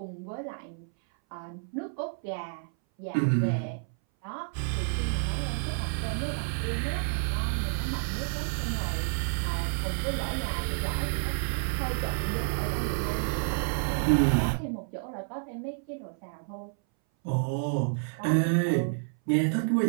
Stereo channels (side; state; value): left; silent; 58 dB below the other